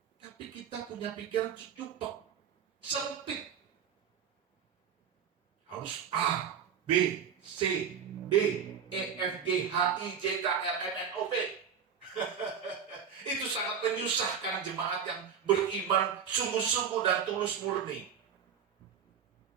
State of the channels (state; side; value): quieter; left; 7.4 dB